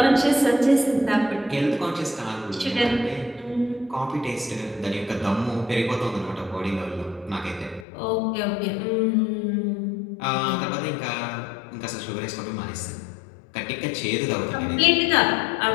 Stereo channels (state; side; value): drops out; right; at 7.9 s